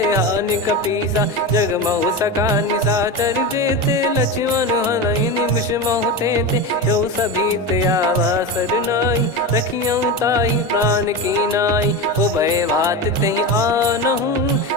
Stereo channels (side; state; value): both; normal; correlation 0.21